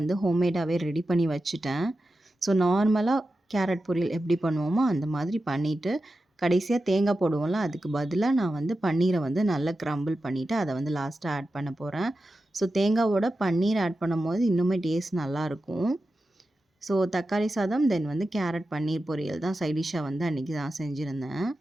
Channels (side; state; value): both; normal; correlation 0.92